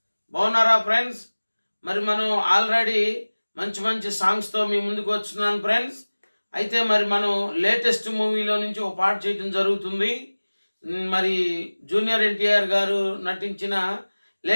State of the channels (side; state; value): both; inverted; correlation -1.00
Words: బాగున్నారా friends? మరి మనం already మంచి మంచి సాంగ్స్తో మీ ముందుకు వస్తున్నాను ఫ్రెండ్స్. అయితే మరి మనం లేటెస్ట్ మూవీలో నుంచి ఒక పాట చేయడం జరుగుతుంది. మరి జూనియర్ ఎన్టీఆర్ గారు నటించిన